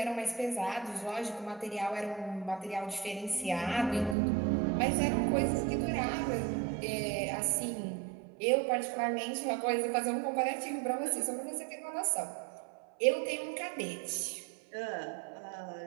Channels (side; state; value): left; drops out; at 4.2 s